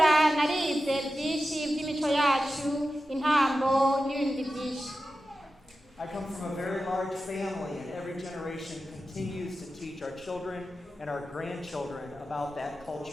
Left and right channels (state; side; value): normal; both; correlation 0.93